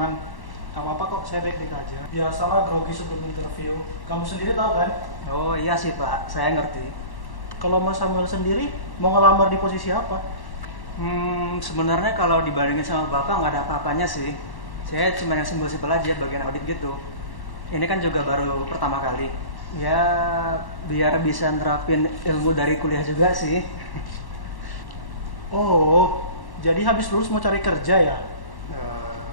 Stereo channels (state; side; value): late; right; 1.1 ms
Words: Gak apa-apa kok, saya baik-baik aja. Biasalah grogi sebelum interview. Kamu sendiri tahu kan? Oh iya sih Pak, saya ngerti. Kalau Mas Samuel sendiri, mau ngelamar di posisi apa? Sebenarnya kalau dibandingin sama Bapak nggak ada apa-apanya sih. Saya cuma yang simpel-simpel aja, bagian audit gitu. Ini kan juga baru pertama kali. Ya, biar bisa nerapin ilmu dari kuliah juga sih. Oh, jadi habis lulus mau cari kerja ya?